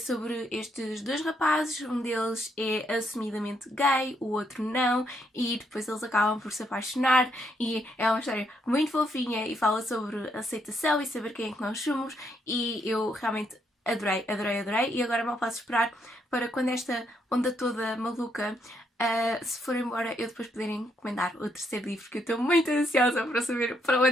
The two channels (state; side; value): normal; both; correlation 0.75